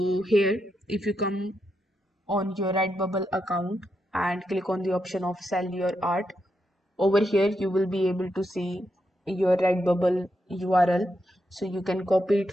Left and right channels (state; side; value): normal; both; correlation 0.83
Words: here, if you come on your Redbubble account and click on the option of sell your art, over here you will be able to see your Redbubble URL. So you can copy it